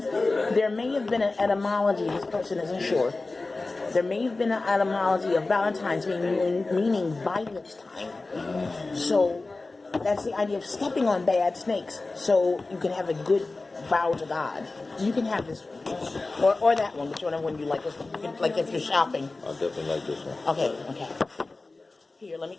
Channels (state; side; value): quieter; right; 3.4 dB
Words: there may have been an etymology, this person isn't sure. There may have been an etymology of Valentine's meaning violet time. So that's the idea of stepping on bad snakes so you can have a good vow to God. You can have this one. Or that one, whichever one you like. Like if you're shopping. I definitely like this one. Okay. Here, let me